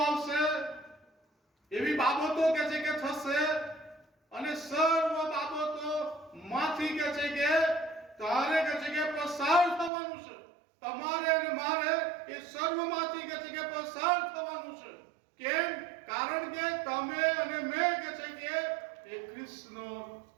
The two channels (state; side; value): drops out; left; at 9.9 s